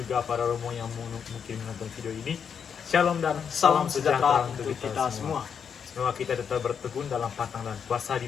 para Romo yang mungkin menonton video ini. Shalom dan Salam sejahtera untuk kita semua. Semoga kita tetap bertekun dalam patang dan puasa di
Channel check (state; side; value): quieter; right; 7.1 dB